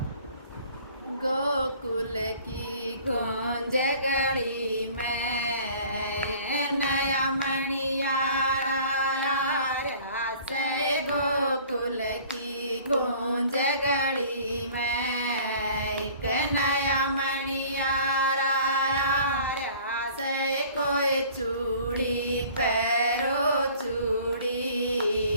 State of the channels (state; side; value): inverted; both; correlation -0.50